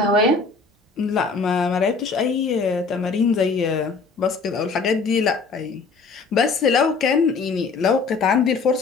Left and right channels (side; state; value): right; quieter; 4.5 dB